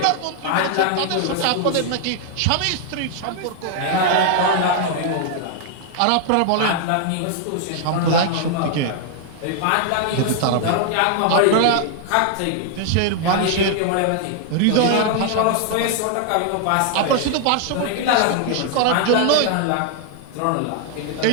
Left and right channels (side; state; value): both; different; correlation 0.00